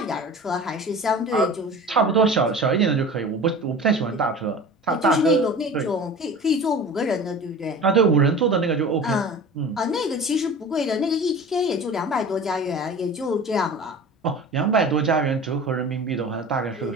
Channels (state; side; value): normal; both; correlation 0.37